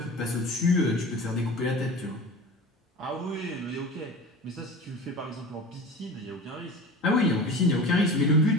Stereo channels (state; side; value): normal; both; correlation 0.35